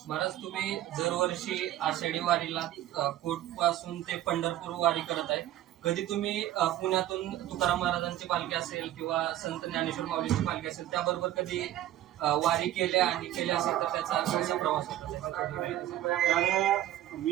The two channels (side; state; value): left; quieter; 13.3 dB